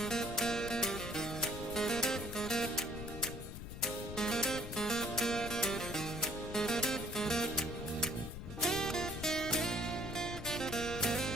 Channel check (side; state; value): left; noise; rumble, 8 dB below the sound